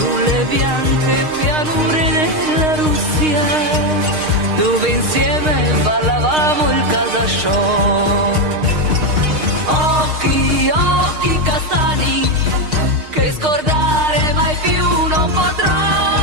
bianche pianure della Russia, dove insieme ballavamo il casasciò. Occhi, occhi castani, che scordare mai più non potrò.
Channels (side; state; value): left; late; 6.5 ms